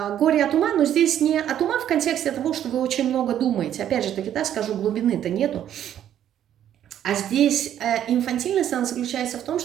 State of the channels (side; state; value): left; quieter; 10.7 dB